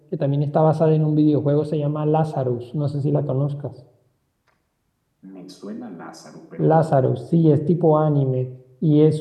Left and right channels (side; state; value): both; identical; correlation 1.00